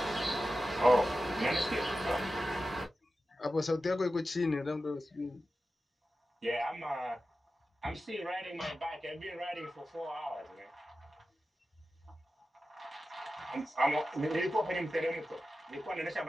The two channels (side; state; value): both; normal; correlation 0.93